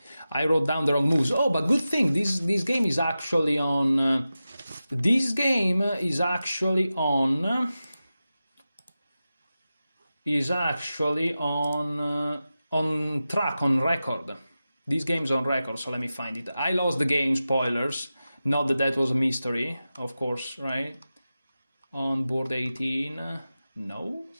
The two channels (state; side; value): inverted; both; correlation -0.93